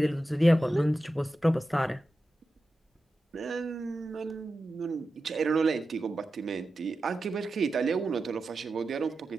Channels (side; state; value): both; normal; correlation 0.92